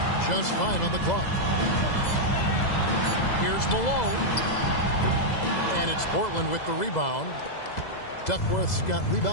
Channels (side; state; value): right; late; 2.0 ms